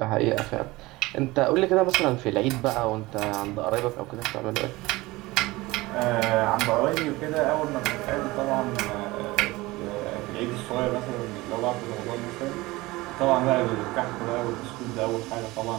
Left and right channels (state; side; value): quieter; left; 20.5 dB